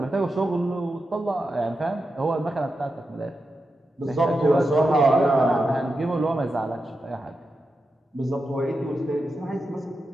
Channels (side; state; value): both; normal; correlation 0.89